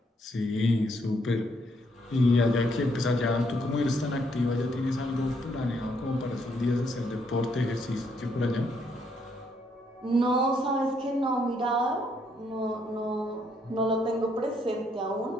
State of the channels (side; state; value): both; normal; correlation 0.72